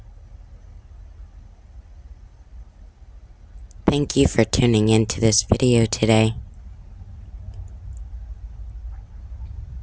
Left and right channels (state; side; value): identical; both; correlation 1.00